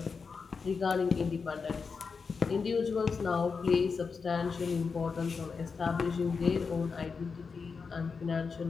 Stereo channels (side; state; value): right; quieter; 5.2 dB